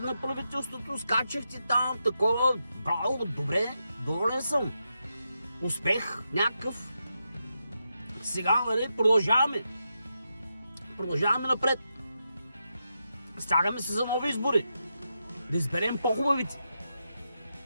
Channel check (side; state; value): both; inverted; correlation -0.86